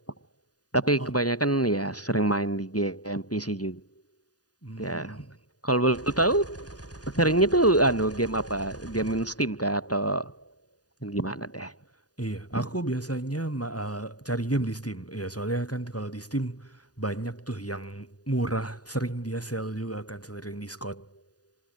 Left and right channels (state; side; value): late; right; 0.68 ms